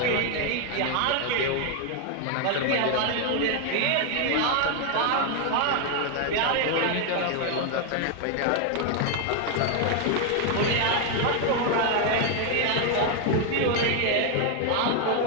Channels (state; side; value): different; both; correlation 0.01